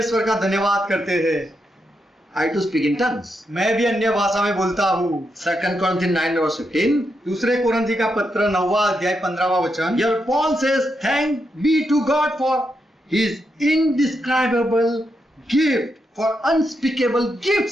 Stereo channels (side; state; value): both; normal; correlation 0.83